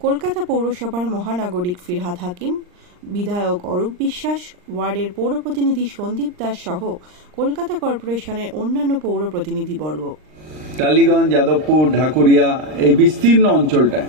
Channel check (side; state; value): left; late; 39 ms